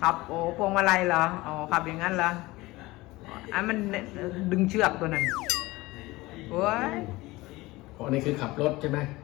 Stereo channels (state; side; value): quieter; right; 20.2 dB